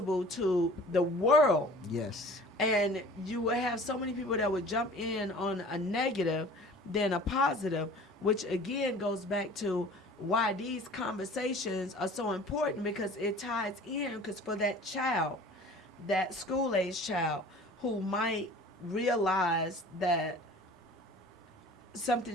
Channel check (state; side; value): normal; both; correlation 0.45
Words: to the world. Yes. And you will have so many people that would jump in on a negative than a positive, which again goes back to why these conversations are so important, because it ties in, because for that child, that school-age child who might realize that